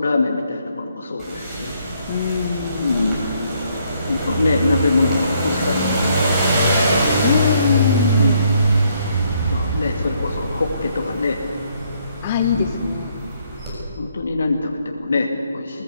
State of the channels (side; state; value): both; inverted; correlation -0.70